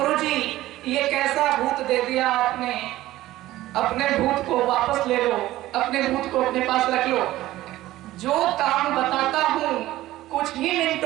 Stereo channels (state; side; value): quieter; left; 15.9 dB